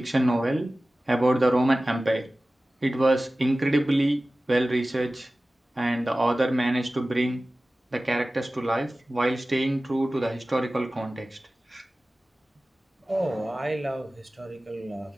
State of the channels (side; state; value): both; normal; correlation 0.97